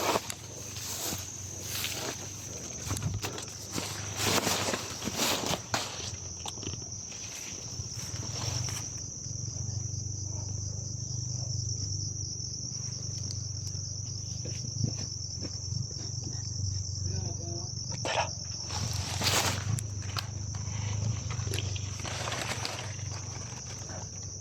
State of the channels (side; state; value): both; identical; correlation 1.00